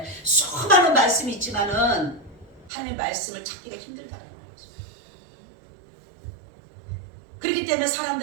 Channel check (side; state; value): left; drops out; at 2.7 s